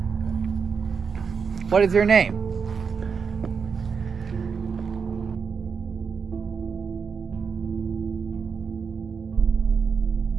What is your name?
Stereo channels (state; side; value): quieter; left; 5.9 dB